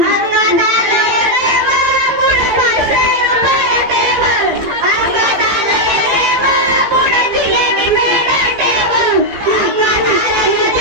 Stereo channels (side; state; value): left; late; 15 ms